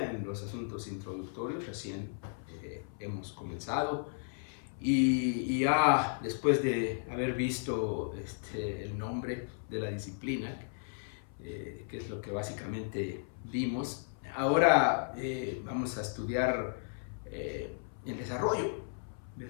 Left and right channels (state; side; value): silent; right; 55 dB below the other